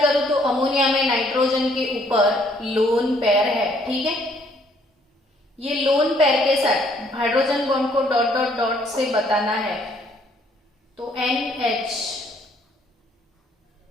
करूं तो अमोनिया में नाइट्रोजन के ऊपर लोन पेयर है, ठीक है। ये लोन पेयर के साथ hydrogen bond co dot dot dot से बताना है, तो NH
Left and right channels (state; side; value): normal; both; correlation 0.65